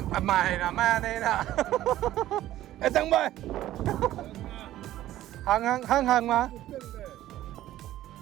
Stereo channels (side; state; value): left; quieter; 14.0 dB